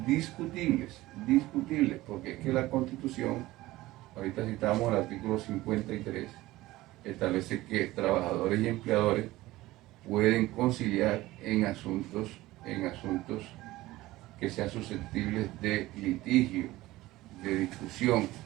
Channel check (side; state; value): left; quieter; 17.7 dB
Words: discutibles, porque es que la Constitución, ahorita citamos el artículo 53, establece que trabajadores y empleadores pueden conciliar en asuntos que sean susceptibles de litigio, de discusión,